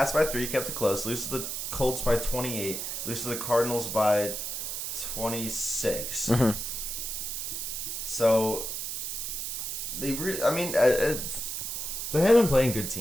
by 3, kept it close. Lose to the Colts by 28. Lose to the Cardinals by 26. Mm-hmm. So, they have been playing good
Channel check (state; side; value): noise; right; hiss, 4 dB below the sound